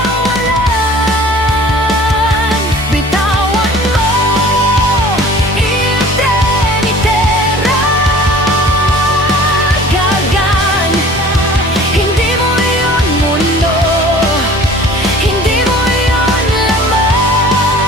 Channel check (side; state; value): both; normal; correlation 0.47